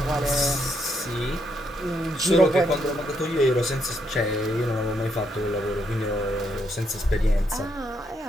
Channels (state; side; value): normal; both; correlation 0.76